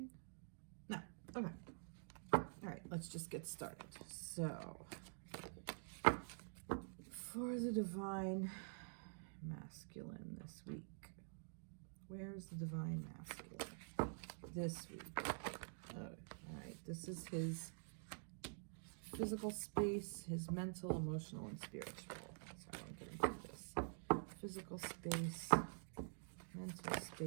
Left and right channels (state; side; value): silent; left; digital silence